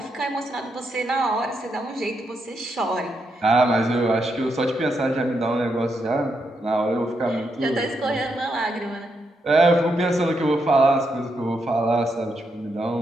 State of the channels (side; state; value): both; normal; correlation 0.81